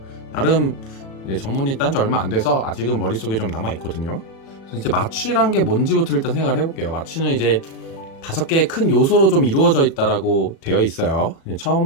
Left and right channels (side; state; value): right; late; 37 ms